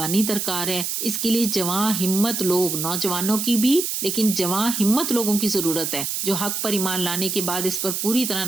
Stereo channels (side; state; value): right; noise; hiss, 2 dB below the sound